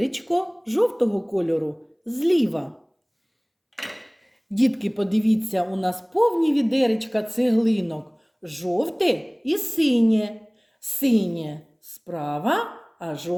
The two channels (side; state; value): both; identical; correlation 1.00